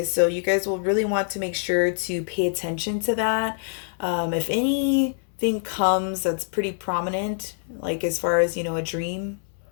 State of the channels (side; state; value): right; silent; 62 dB below the other